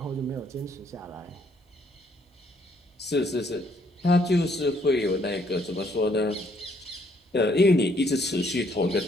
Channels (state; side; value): normal; both; correlation 0.68